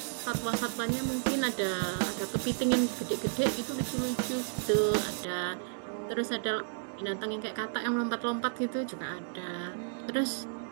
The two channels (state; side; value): silent; left; digital silence